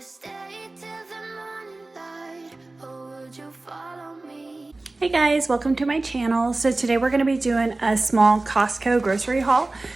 stay till the morning light, or would you follow me? Hey guys, welcome to my channel. So today we're going to be doing a small Costco grocery haul.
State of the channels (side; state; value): left; quieter; 3.1 dB